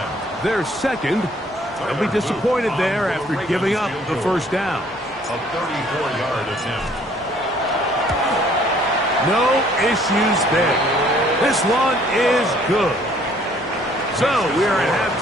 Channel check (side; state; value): both; normal; correlation 0.60